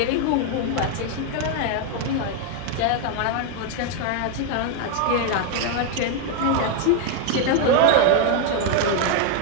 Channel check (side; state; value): both; different; correlation 0.01